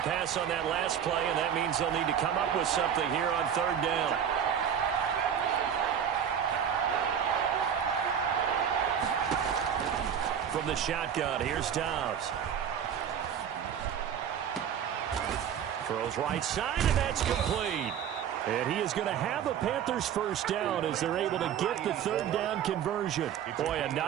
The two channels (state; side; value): quieter; left; 8.6 dB